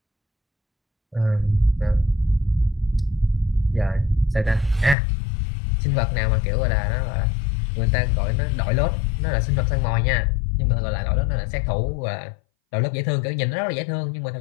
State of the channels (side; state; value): right; drops out; at 5.0 s